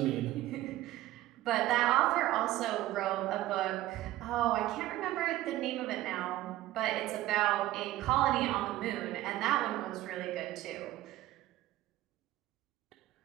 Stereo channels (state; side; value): quieter; left; 15.5 dB